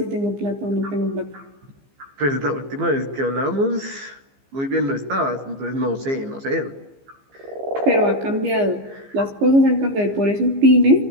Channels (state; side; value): late; left; 15 ms